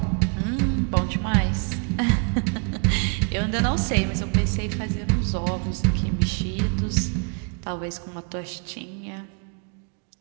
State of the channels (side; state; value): left; quieter; 38.3 dB